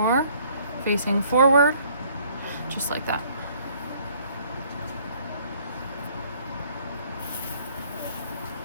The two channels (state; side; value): inverted; both; correlation -0.60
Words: facing forward, just like that.